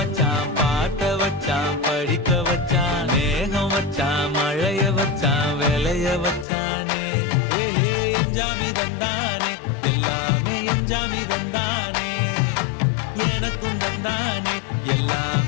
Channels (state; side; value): drops out; right; at 6.5 s